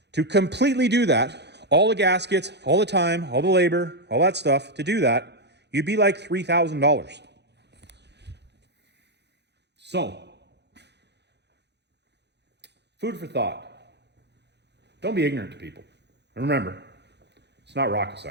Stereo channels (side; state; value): left; late; 0.50 ms